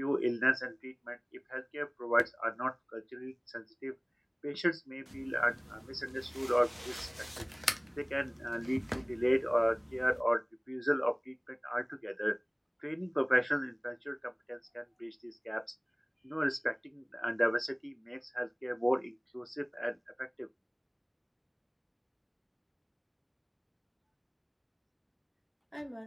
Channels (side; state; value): both; identical; correlation 1.00